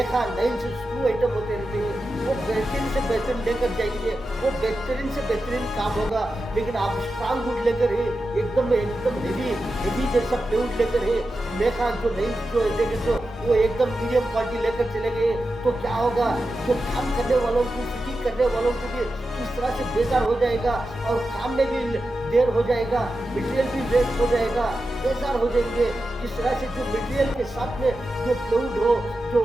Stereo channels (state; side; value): normal; both; correlation 0.91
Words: नाइल्स स्क्रू आइटम होते रहते हैं वो बेहतरीन से बेहतरीन लेकर जाएंगे, वो बेहतरीन से बेहतरीन काम होगा। लेकिन आप स्ट्रांग वुड लेकर है एकदम हेवी जैसा प्लेवुड लेकर है मेखा जो नाइल्स जो देखे तो वो एकदम मीडियम क्वालिटी लेकर चले गए तो क्या होगा, जो काम करने वालों को फिटिंग करने वालों को भी किस तरह से बेजार हो जाएगा और काम में भी देर हो जाएगा, मटेरियल भी वेस्ट हो जाएगा, बेजार हो जाएंगे। जिस तरह से जो मटेरियल के साथ में जो प्लेवुड हो जो